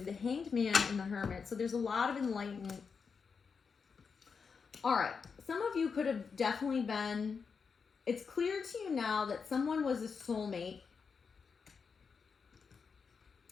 have the Hanged Man and the Hermit. So there's a lot of enlightenment. All right. Some of you could have definitely been, it's clear to you now that someone was a soulmate,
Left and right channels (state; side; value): quieter; right; 5.6 dB